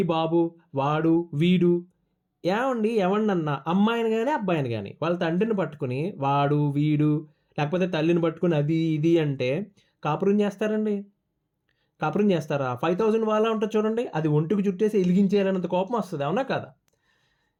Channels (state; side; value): identical; both; correlation 1.00